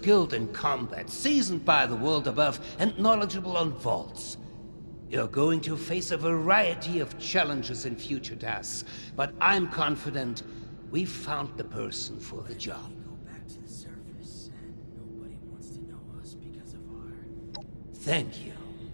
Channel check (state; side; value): inverted; both; correlation -1.00